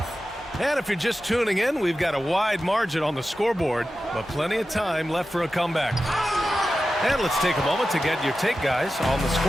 And if you're just tuning in, we've got a wide margin on the scoreboard, but plenty of time left for a comeback. And let's take a moment to get your take, guys, on the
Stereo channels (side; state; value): both; normal; correlation 0.93